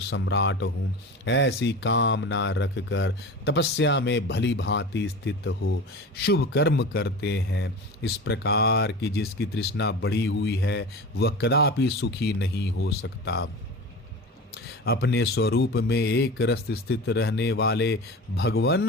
सम्राट हूँ, ऐसी कामना रखकर तपस्या में भली भांति स्थित हो शुभ कर्म करते हैं। इस प्रकार की जिसकी तृष्णा बढ़ी हुई है वह कदापि सुखी नहीं हो सकता। अपने स्वरूप में एक रस स्थित रहने वाले भगवन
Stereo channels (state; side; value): normal; both; correlation 0.32